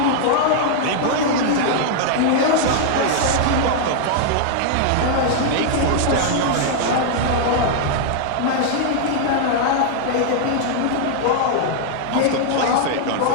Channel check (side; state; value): both; different; correlation -0.01